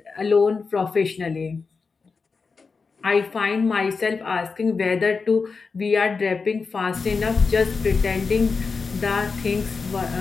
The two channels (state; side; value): quieter; right; 4.7 dB